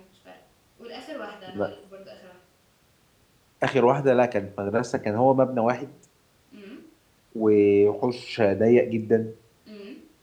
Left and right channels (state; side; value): identical; both; correlation 1.00